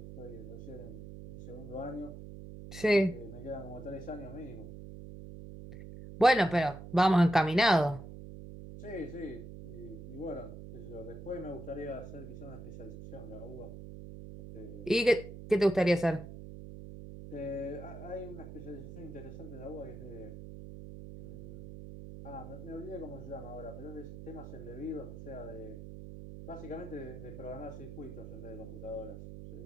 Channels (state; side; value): noise; right; hum, 12 dB below the sound